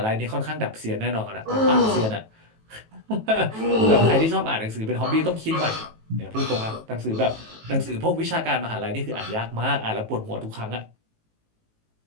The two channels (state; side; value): late; left; 18 ms